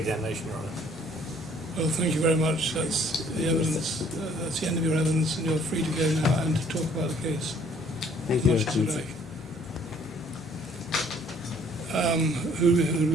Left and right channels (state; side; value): normal; both; correlation 0.60